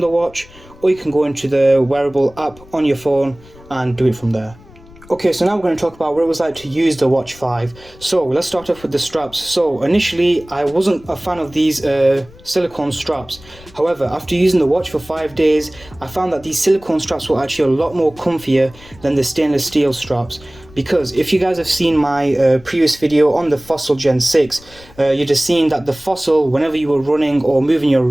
the watch, or you can go into the wearable app on your phone and do it from there. Okay, so now we're going to talk about what it was like to use the Watch 5. So let's start off with the straps. So initially I wasn't a fan of these silicone straps. However, after using the watch for 5 days, I found that these silicone straps were actually a lot more comfier than the stainless steel straps. Because if you guys have seen my previous video on the Fossil Gen 6, you'd have seen that the Fossil, whenever you were running or moving your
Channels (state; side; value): noise; left; rumble, 23 dB below the sound